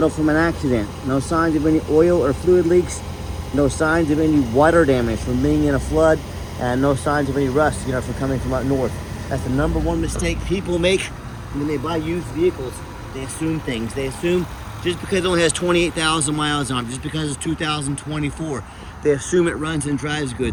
from an accident. No signs of any oil or fluid leaks. No signs of any water damage from being in a flood, and no signs of any rust, from coming from up north. That's the number one mistake people make when they buy used vehicles. They assume things. They assume just because it only has 28,000 miles on it, just because it's 2024, they assume it runs and drives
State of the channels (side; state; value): both; identical; correlation 1.00